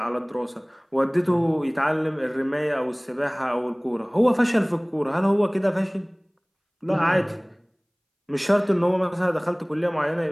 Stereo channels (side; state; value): both; identical; correlation 1.00